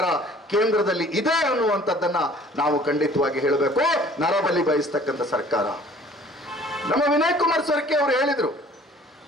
ಕೇಂದ್ರದಲ್ಲಿ ಇದೆ ಅನ್ನುವಂಥದ್ದನ್ನ ನಾವು ಖಂಡಿತವಾಗಿ ಹೇಳಬೇಕು. ನರಬಲಿ ಬಯಸ್ತಕ್ಕಂಥ ಸರ್ಕಾರ. ನಮ್ಮ ವಿನಯ್ ಕುಮಾರ್ ಸರ್ಕೆ ಅವರು ಹೇಳಿದ್ರು,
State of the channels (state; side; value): normal; both; correlation 0.52